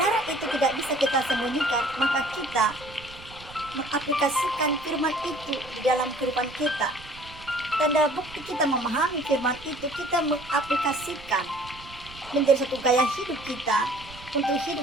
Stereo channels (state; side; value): noise; right; rumble, 19 dB below the sound